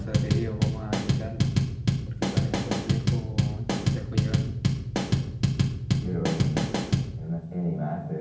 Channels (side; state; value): both; identical; correlation 1.00